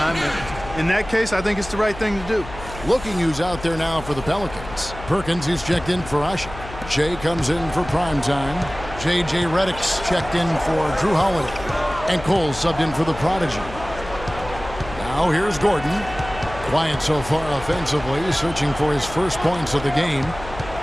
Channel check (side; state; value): left; noise; hum, 13 dB below the sound